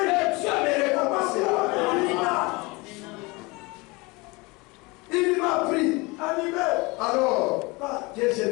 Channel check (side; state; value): right; quieter; 25.2 dB